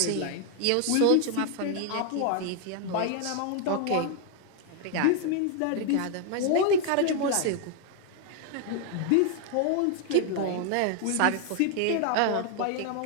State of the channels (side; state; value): both; different; correlation 0.00